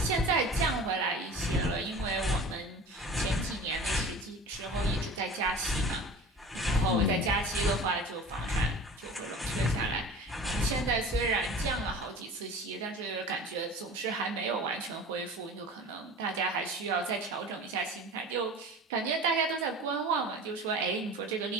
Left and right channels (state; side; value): normal; both; correlation 0.38